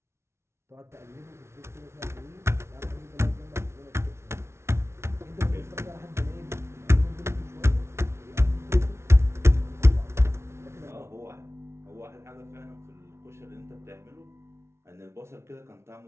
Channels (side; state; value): left; late; 0.13 ms